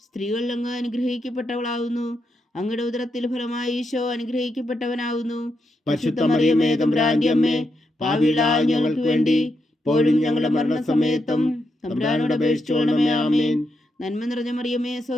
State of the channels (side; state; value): both; normal; correlation 0.83